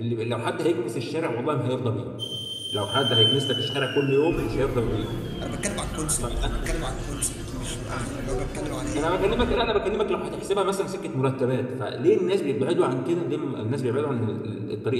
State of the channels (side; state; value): both; identical; correlation 1.00